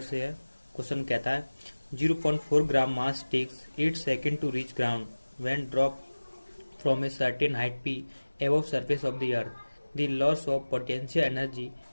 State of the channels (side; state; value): both; inverted; correlation -1.00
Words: से है। क्वेश्चन कहता है 0.4 gram mass takes 8 second to reach ground when drop from a certain height p above surface of the earth. The loss of potential energy